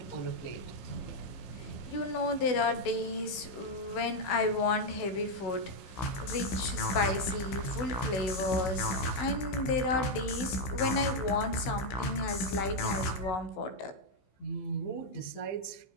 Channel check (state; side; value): late; right; 15 ms